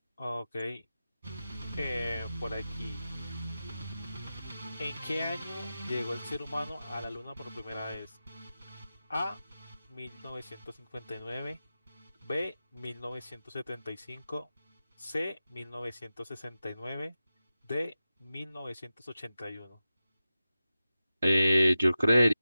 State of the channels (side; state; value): both; inverted; correlation -0.93